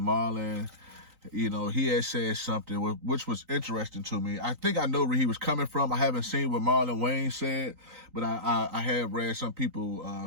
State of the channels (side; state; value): left; late; 3.9 ms